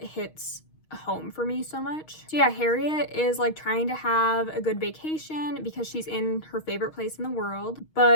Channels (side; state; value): right; late; 6.4 ms